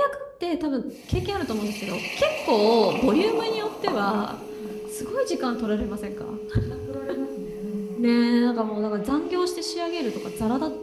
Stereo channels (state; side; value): identical; both; correlation 1.00